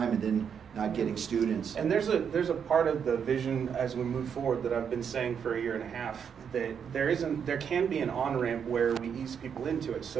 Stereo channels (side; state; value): left; quieter; 7.4 dB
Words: and then not getting students. And there's a part of the vision as we move forward that I've been saying for a year and a half, that there can be an on-ramp where we ease people into it